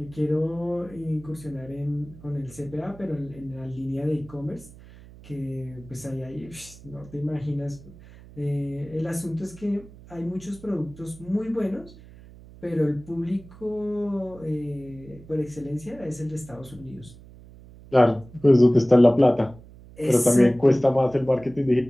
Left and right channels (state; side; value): noise; right; hum, 20 dB below the sound